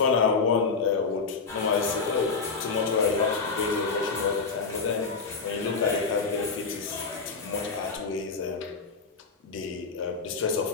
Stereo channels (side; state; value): right; quieter; 4.6 dB